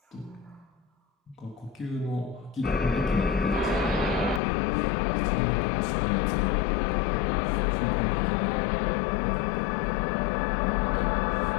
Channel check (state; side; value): drops out; right; at 4.4 s